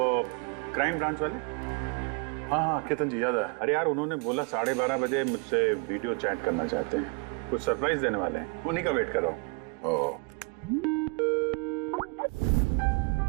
क्राइम ब्रांच वाले। हाँ हाँ, केतन जी याद आया। अरे यार, उन्होंने बोला 12:30 बजे मुझसे वीडियो चैट करना चाहते हैं, कुछ सरप्राइज देने वाले हैं, उन्हीं का वेट कर रहा हूँ। ओह,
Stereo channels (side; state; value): left; quieter; 32.1 dB